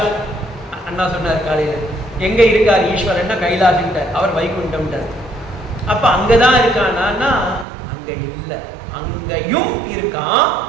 அண்ணா சொன்னார் காலையில, எங்க இருக்கார் ஈஸ்வரன்னா கைலாஷ்ட்டார், அவர் வைகுண்டம்ட்டார். அப்ப அங்கதான் இருக்கானா? அங்க இல்லை, அங்கேயும் இருக்கான்.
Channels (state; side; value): drops out; left; at 7.7 s